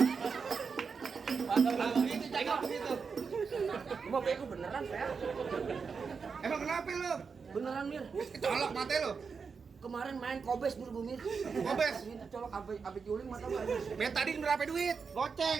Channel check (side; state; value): left; quieter; 5.5 dB